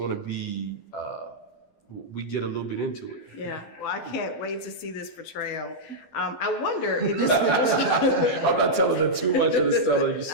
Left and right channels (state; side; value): late; right; 12 ms